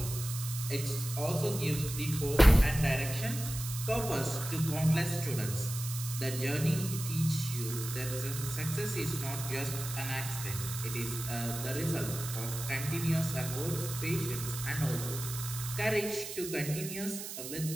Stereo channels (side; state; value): right; noise; hiss, 8 dB below the sound